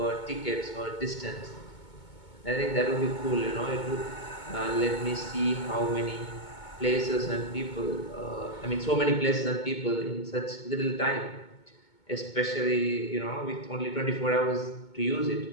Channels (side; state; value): right; late; 2.2 ms